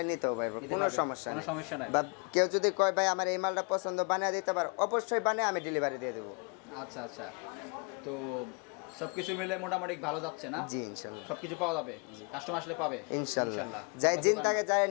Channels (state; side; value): quieter; right; 34.8 dB